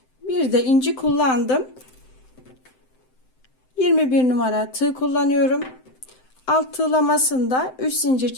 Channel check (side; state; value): right; late; 7.8 ms